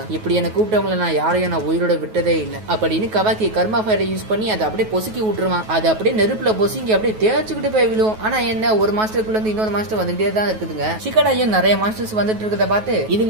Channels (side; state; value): left; late; 9.3 ms